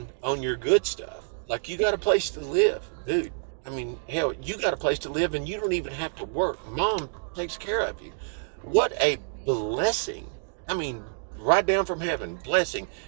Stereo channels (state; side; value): silent; left; digital silence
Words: on your good stuff, like you got a place to live, dude. I mean, hell, you got a place to live and you don't even have to work. Mom takes care of you. What a blessing. I mean, right down from heaven, blessing.